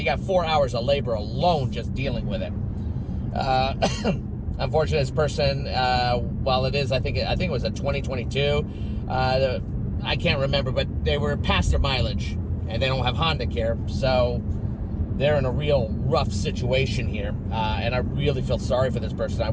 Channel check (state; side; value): identical; both; correlation 1.00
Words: got 4 hours of labor alone just dealing with it. Unfortunately, this person, while it is, I think it was a 2022. I can't remember, but they were past their mileage, and they don't have Honda Care, so they're in a real rough situation here, and I really feel sorry for this person. I